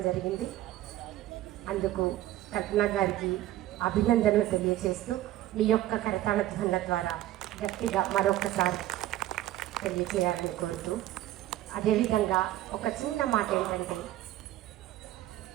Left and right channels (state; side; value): quieter; left; 14.5 dB